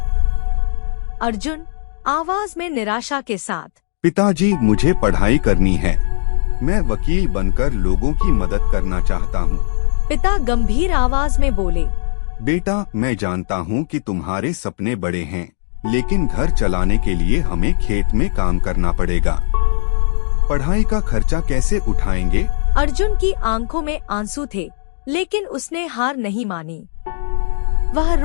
अर्जुन आवाज में निराशा के साथ, पिताजी, मुझे पढ़ाई करनी है। मैं वकील बनकर लोगों की मदद करना चाहता हूँ। पिता गंभीर आवाज में बोले, बेटा, मैं जानता हूँ कि तुम्हारे सपने बड़े हैं, लेकिन घर चलाने के लिए हमें खेत में काम करना पड़ेगा। पढ़ाई का खर्चा कैसे उठाएंगे? अर्जुन की आंखों में आंसू थे, लेकिन उसने हार नहीं मानी। वह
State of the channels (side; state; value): right; silent; digital silence